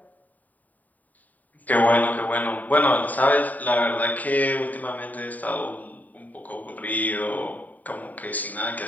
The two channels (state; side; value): late; right; 0.078 ms